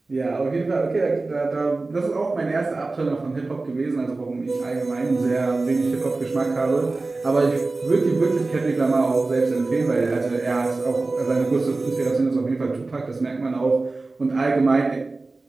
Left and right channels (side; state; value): left; quieter; 3.5 dB